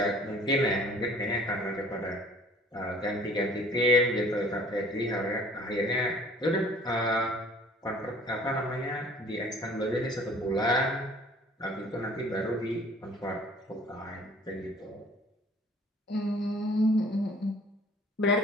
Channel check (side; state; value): both; normal; correlation 0.52